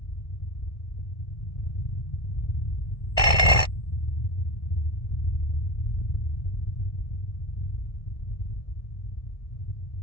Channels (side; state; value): right; late; 1.7 ms